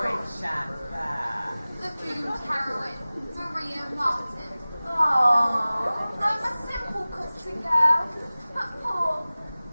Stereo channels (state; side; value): inverted; both; correlation -0.98